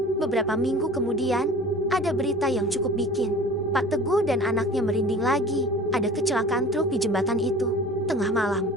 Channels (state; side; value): normal; both; correlation 0.41